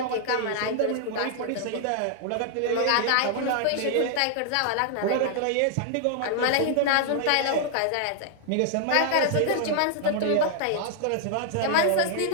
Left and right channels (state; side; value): different; both; correlation 0.00